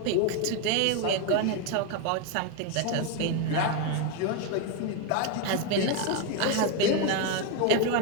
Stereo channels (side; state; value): both; different; correlation 0.02